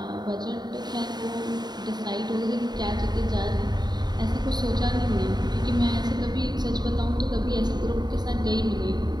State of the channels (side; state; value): left; late; 0.20 ms